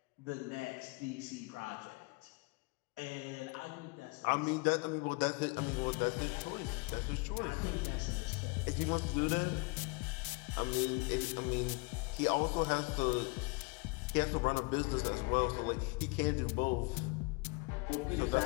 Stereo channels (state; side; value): quieter; right; 28.0 dB